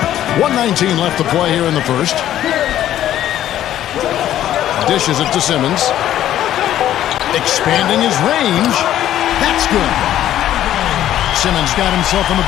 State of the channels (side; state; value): right; quieter; 12.1 dB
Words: 1:19 left to play here in the first. Dishes it to Simmons. Expanding his range. That's good. Simmons got himself on the